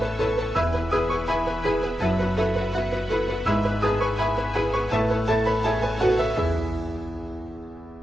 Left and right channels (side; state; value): both; normal; correlation 0.90